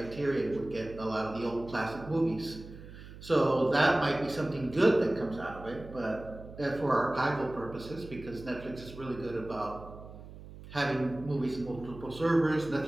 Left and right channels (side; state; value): right; noise; hum, 15 dB below the sound